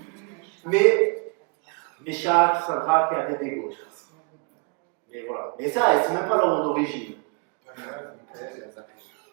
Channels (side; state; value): left; quieter; 32.3 dB